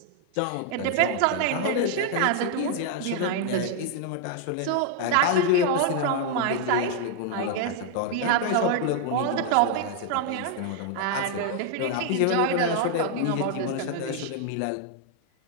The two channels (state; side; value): different; both; correlation 0.00